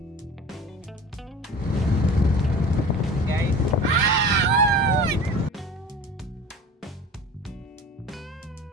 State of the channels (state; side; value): normal; both; correlation 0.39